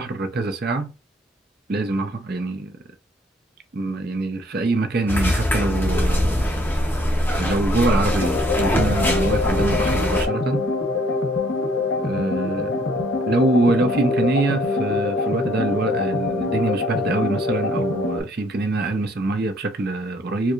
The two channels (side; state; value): both; normal; correlation 0.63